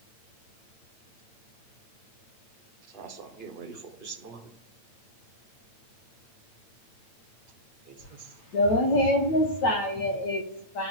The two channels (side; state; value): right; late; 9.0 ms